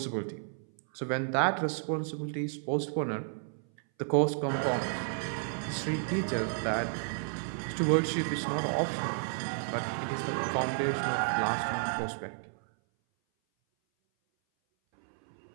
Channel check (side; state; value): left; silent; 56 dB below the other